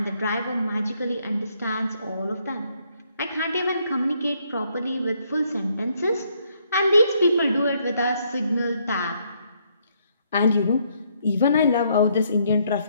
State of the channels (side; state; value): both; inverted; correlation -0.71